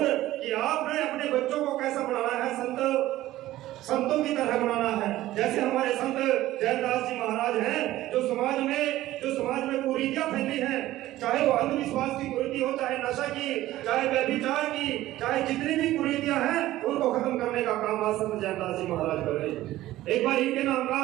कि आपने अपने बच्चों को कैसा बनाना है, संतों की तरह बनाना है। जैसे हमारे संत जैनदास जी महाराज हैं जो समाज में कुरीतियां फैली हैं, चाहे वो अंधविश्वास की कुरीति हो, चाहे नशा की, चाहे व्यभिचार की, चाहे जितनी भी कुरीतियां हैं उनको खत्म करने का काम आज संत जैनदास जी महाराज कर रहे हैं। एक बार इनके नाम का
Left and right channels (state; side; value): quieter; left; 15.4 dB